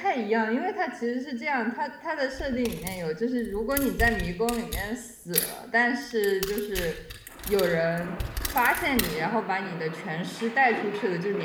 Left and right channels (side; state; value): both; identical; correlation 1.00